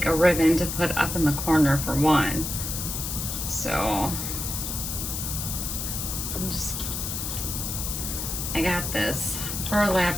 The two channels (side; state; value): left; noise; hiss, 4 dB below the sound